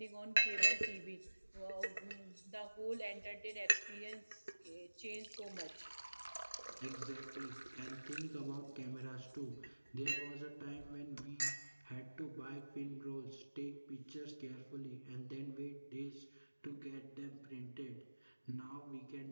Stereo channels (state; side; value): inverted; both; correlation -1.00